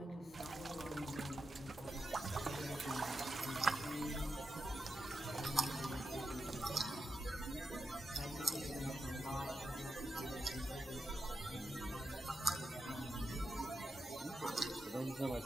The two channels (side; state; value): both; normal; correlation 0.87